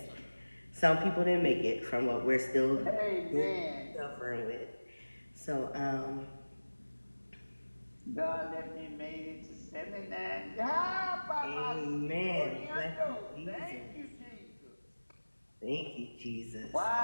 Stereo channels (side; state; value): both; inverted; correlation -1.00